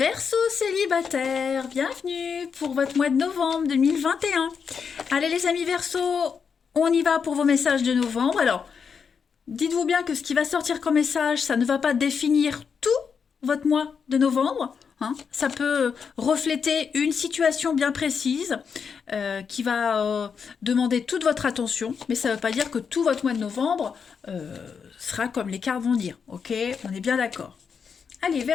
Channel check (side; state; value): right; quieter; 6.3 dB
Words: célibataire, bienvenue pour votre mois de novembre 2021. Allez les amis Verseau, on y va pour vos messages de novembre. Alors, dites-vous bien que ce qui va sortir comme message, ça ne va pas définir tout votre mois de novembre, hein. Ça peut refléter une situation bien précise qui va demander toute votre attention, mais ça ne veut pas dire que tout votre mois de novembre sera comme les cartes vont dire. Ok, on est bien d'accord. Allez,